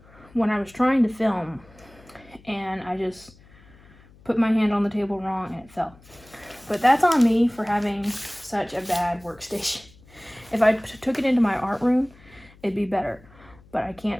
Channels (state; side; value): noise; left; hum, 25 dB below the sound